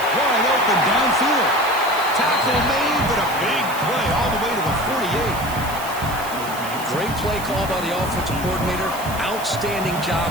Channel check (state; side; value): noise; right; hiss, 13 dB below the sound